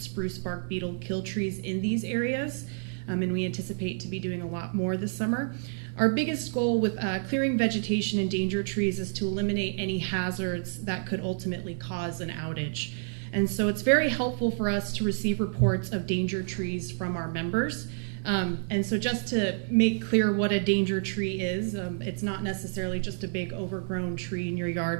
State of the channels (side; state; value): left; silent; digital silence